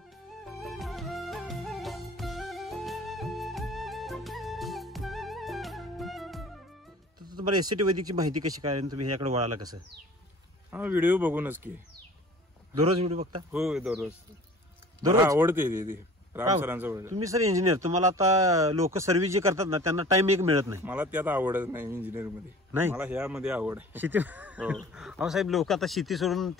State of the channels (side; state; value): both; normal; correlation 0.45